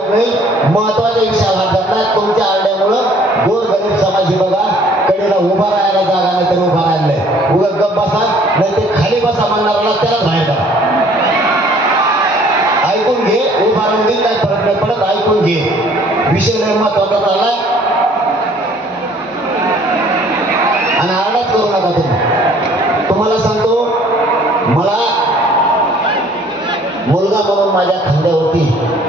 नाही. महत्वाच्या विषयाला हात घातला. तुमच्या आरड्यामुळं गोरगरीब समाजी बघा कडेला उभा राहायला जागा नाही तर उभा राहिलाय. उगा गप बसा नाही ते खाली बसा म्हणणाऱ्याला त्याला बाहेर करा. ऐकून घे. उभा राहून दे, काही फरक नाही पडत. ऐकून घे. विषय लय महत्वाचा चाललाय आणि आरडाच करू नका तुम्ही. तुम्हाला सांगतो, मला मुलगा म्हणून माझ्या खांद्यावरती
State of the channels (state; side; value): normal; both; correlation 0.57